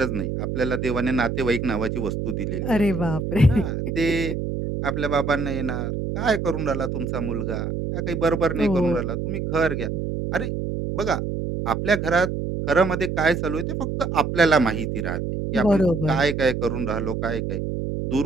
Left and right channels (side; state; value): right; noise; hum, 3 dB below the sound